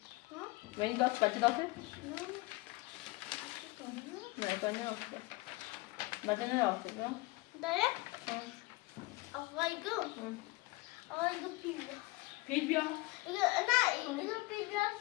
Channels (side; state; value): right; quieter; 22.4 dB